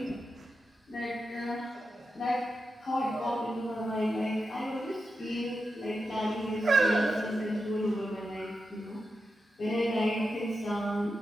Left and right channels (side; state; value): both; normal; correlation 0.89